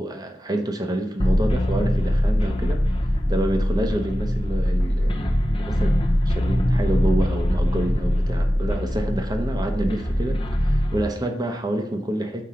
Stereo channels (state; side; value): normal; both; correlation 0.93